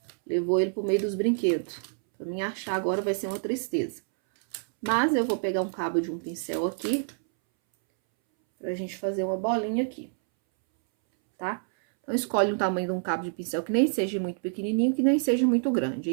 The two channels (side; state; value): left; silent; 60 dB below the other